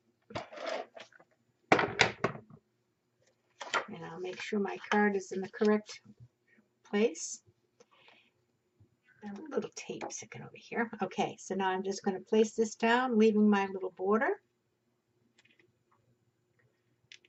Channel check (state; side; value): identical; both; correlation 1.00